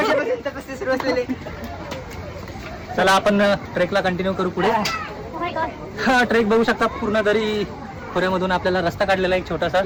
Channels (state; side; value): identical; both; correlation 1.00